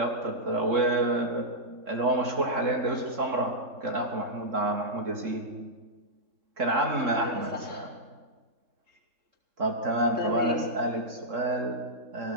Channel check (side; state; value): left; late; 3.7 ms